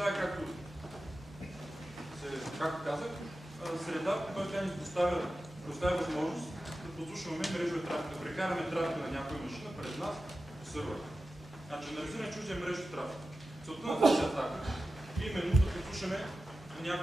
както казах, среда, в която тя ни предоставя възможност да послушваме мрежовия трафик, да прекараме трафика на някоя машина през нас по сървъра. Значи, анализираме чуждия мрежов трафик. Целта на тази атака е именно да послушаме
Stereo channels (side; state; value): both; normal; correlation 0.93